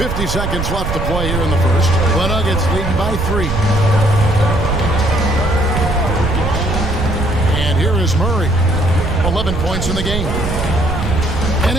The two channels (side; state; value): right; noise; rumble, 3 dB below the sound